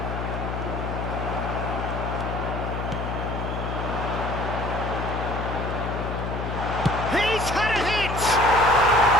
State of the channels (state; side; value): noise; left; hum, 4 dB below the sound